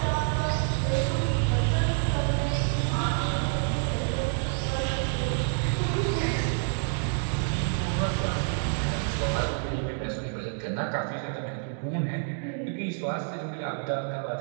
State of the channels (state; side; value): silent; left; 59 dB below the other